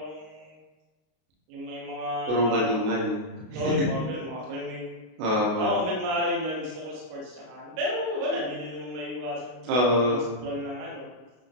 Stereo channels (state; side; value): late; left; 33 ms